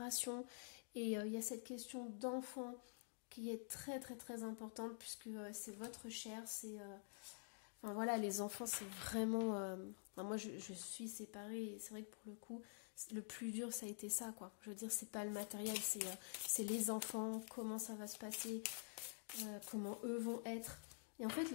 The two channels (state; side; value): silent; right; digital silence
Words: et il y a cette question d'enfant qui est très très très importante puisque c'est votre chair, c'est... enfin voilà, les enfants c'est vraiment... moi je suis séparée et c'est vrai que pour le coup, le plus dur ça a été ça quoi. Je veux dire, c'est pas le matériel, c'est les enfants, comment ça va se passer, comment eux vont être... Et en fait,